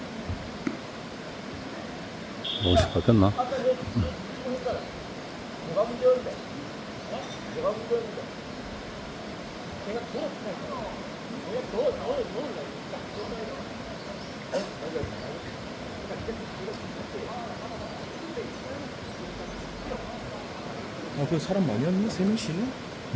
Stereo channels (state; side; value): identical; both; correlation 1.00